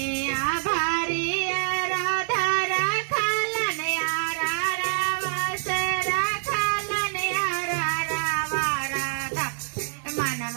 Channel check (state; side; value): silent; left; digital silence